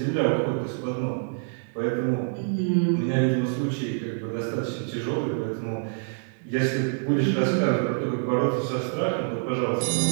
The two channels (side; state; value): left; silent; digital silence